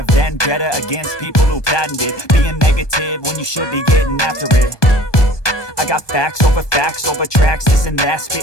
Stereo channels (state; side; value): late; right; 1.2 ms